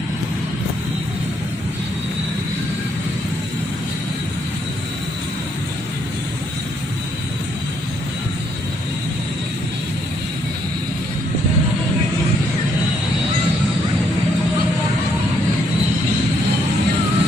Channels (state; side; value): normal; both; correlation 0.72